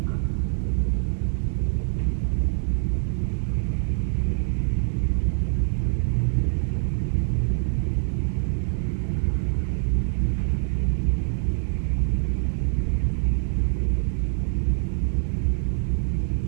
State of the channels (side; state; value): left; silent; digital silence